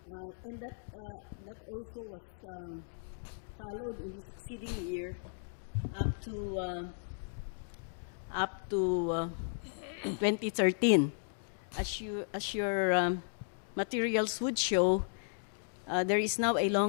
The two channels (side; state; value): right; silent; digital silence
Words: And that also was followed in the succeeding year up to 2013. As your materials would show, there is now a